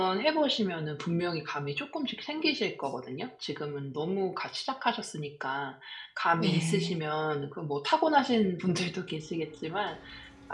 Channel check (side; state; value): both; identical; correlation 1.00